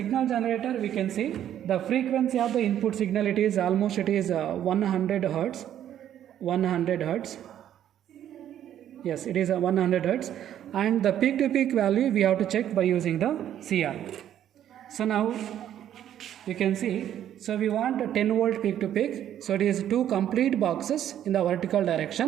generator we can see the frequency of the input signal, it is 100 hertz. 100 hertz. Yes, it is 100 hertz, and the peak to peak value we have to check by using the CR. So now you can see, so we want a 10 volt peak to peak, so it is 2 complete boxes in the vertical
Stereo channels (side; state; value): left; quieter; 10.8 dB